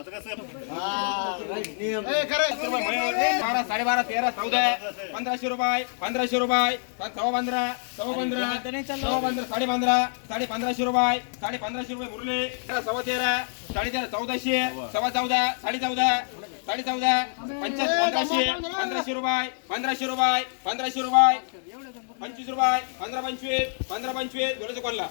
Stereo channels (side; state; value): right; silent; digital silence